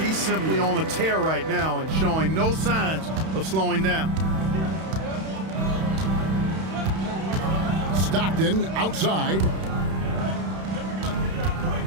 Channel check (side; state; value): left; late; 31 ms